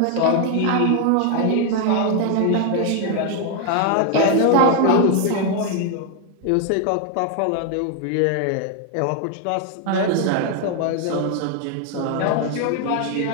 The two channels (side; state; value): both; different; correlation 0.01